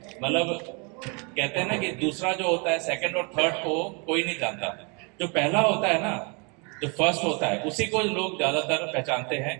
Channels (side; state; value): left; quieter; 33.2 dB